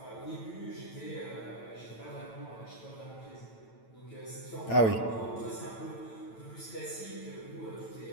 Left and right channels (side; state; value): right; late; 9.0 ms